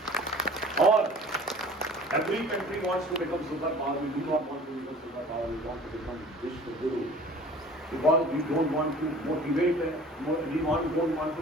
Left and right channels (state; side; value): normal; both; correlation 0.46